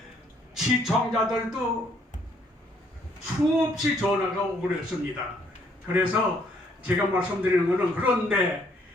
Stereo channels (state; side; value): normal; both; correlation 0.67